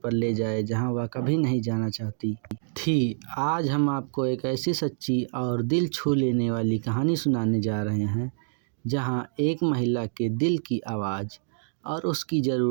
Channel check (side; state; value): left; silent; digital silence